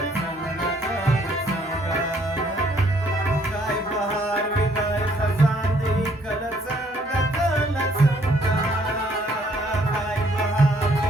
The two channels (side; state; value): both; normal; correlation 0.65